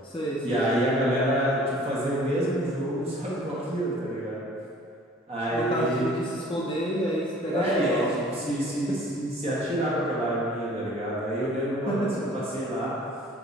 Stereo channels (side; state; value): both; normal; correlation 0.51